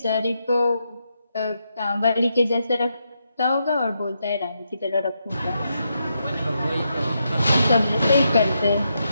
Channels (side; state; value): both; inverted; correlation -0.82